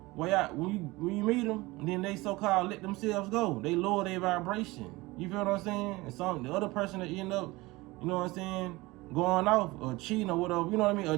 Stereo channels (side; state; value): left; quieter; 21.3 dB